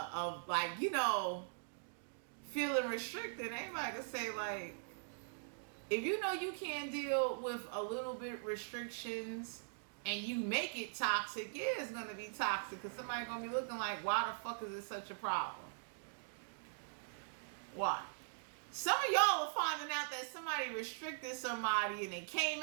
like, feeling restricted. Anybody can say like, if you can't deal with a little bit restrictions and you make it toxic, yeah, it's going to be toxic, because somebody's going to be looking like, why the fuck is it such a problem? Why? Some of y'all are finding out that somebody restricted somebody and they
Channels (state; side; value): silent; left; digital silence